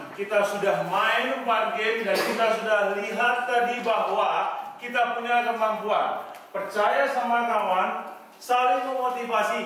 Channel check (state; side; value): identical; both; correlation 1.00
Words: Kita sudah main 4 game dan kita sudah lihat tadi bahwa kita punya kemampuan. Percaya sama kawan, saling